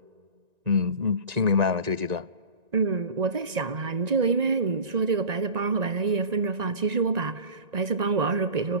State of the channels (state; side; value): late; left; 1.9 ms